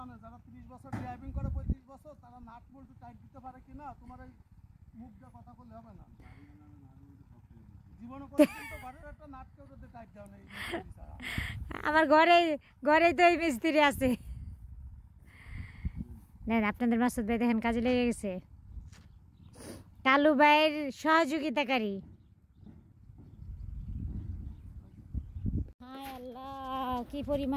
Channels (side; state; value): both; identical; correlation 1.00